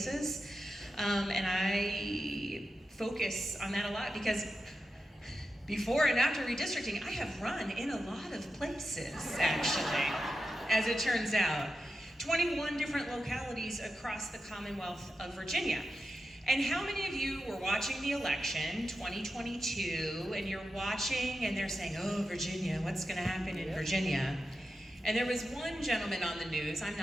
And I focus on that a lot because before and after redistricting, I have run in a lot of places, actually, as it turns out. 21 different localities across the Commonwealth of Virginia. And how many of you were watching the election, 2022, and you're watching and they're saying, oh, Virginia, what's gonna happen in Virginia? And there was one gentleman on the news, I'm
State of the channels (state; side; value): normal; both; correlation 0.90